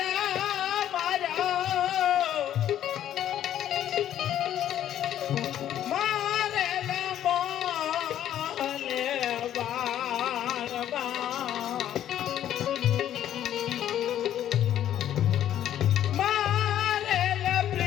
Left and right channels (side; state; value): right; quieter; 11.2 dB